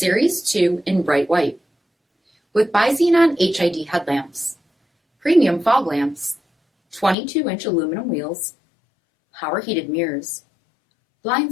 2 in bright white. With bi-xenon HID headlamps, premium fog lamps, 22-inch aluminum wheels, power heated mirrors,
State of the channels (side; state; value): right; drops out; at 7.2 s